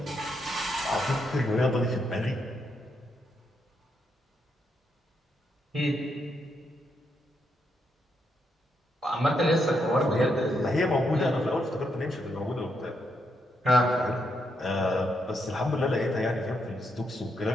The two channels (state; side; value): normal; both; correlation 0.79